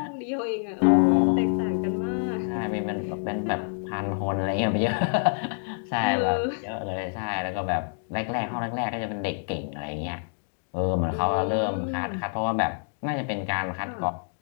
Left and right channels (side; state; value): right; silent; digital silence